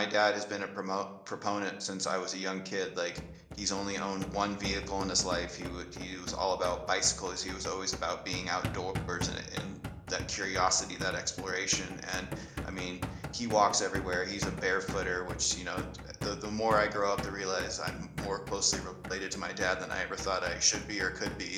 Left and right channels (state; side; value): identical; both; correlation 1.00